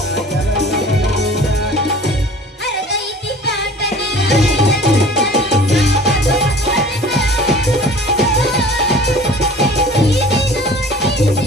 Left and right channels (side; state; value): both; normal; correlation 0.45